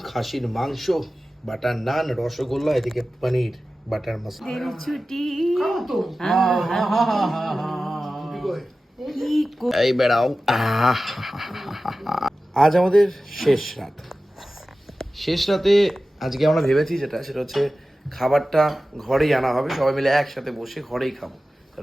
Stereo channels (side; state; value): both; normal; correlation 0.95